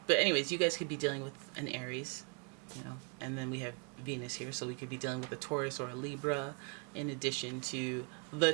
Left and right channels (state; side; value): quieter; left; 36.3 dB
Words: anyways, you guys could be dealing with an Aries, you know, and then we have Venus here, so we could be dealing with a Taurus or a Libra, in addition to the